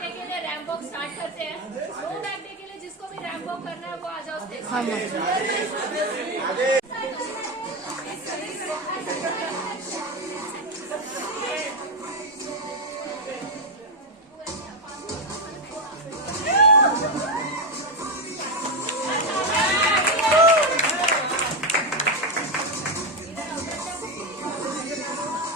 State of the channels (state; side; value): normal; both; correlation 0.08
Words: डे के लिए रैंप वॉक स्टार्ट करते हैं. नो बैग डे के लिए जिसको भी रैंप वॉक करना है वो आ जाओ स्टेज.